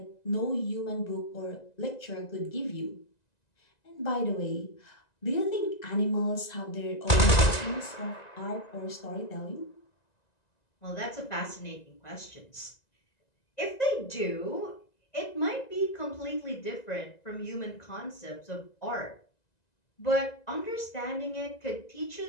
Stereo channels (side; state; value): right; late; 1.9 ms